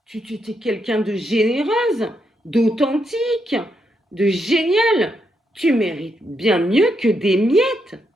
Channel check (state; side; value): normal; both; correlation 0.81